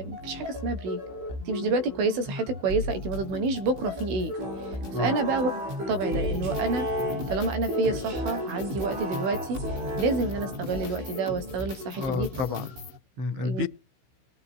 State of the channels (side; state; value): left; late; 16 ms